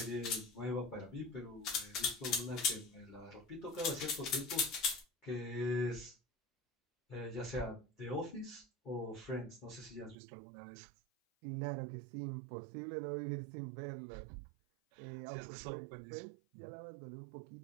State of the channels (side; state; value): left; drops out; at 10.2 s